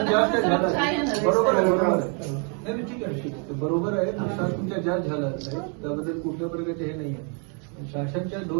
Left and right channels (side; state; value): left; quieter; 38.1 dB